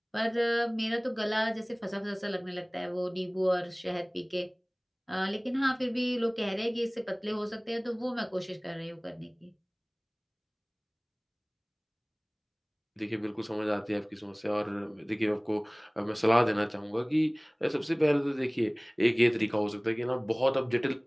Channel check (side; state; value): both; identical; correlation 1.00